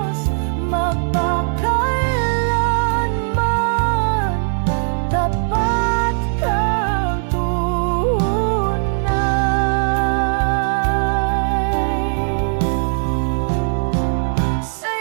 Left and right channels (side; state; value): left; silent; digital silence